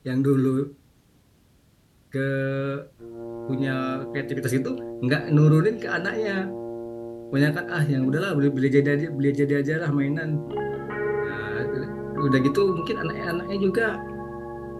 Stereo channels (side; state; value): both; identical; correlation 1.00